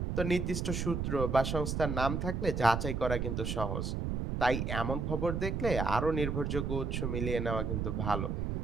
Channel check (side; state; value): right; noise; rumble, 1 dB below the sound